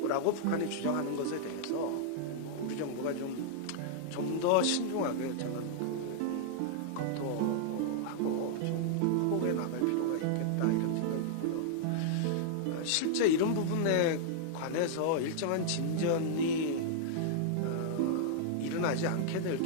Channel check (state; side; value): different; both; correlation -0.01